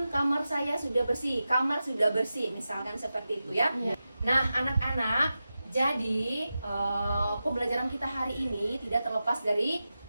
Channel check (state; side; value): inverted; both; correlation -0.92